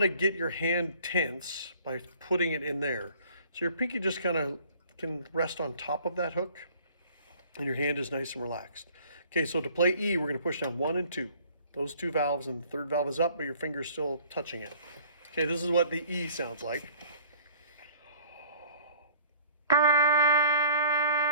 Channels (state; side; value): inverted; both; correlation -0.53